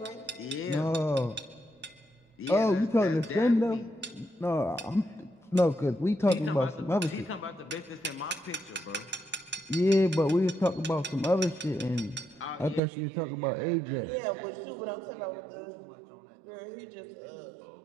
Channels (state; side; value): drops out; left; at 12.8 s